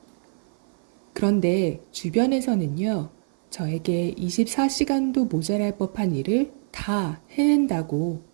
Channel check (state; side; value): silent; left; 56 dB below the other